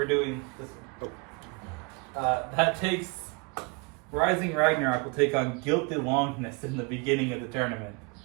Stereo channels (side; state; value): left; quieter; 30.7 dB